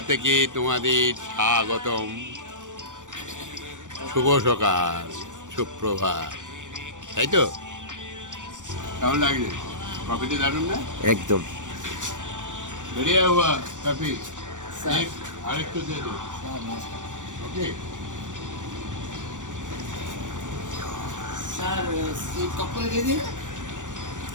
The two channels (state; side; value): late; left; 0.87 ms